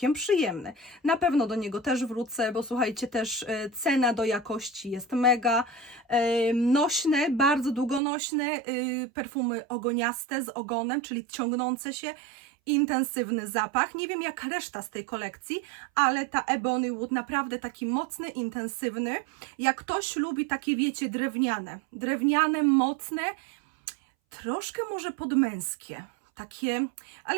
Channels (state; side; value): drops out; left; at 8.0 s